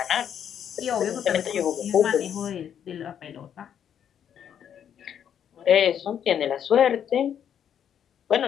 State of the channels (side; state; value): right; quieter; 9.0 dB